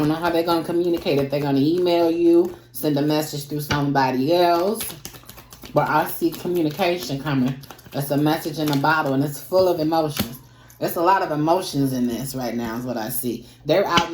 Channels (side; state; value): both; identical; correlation 1.00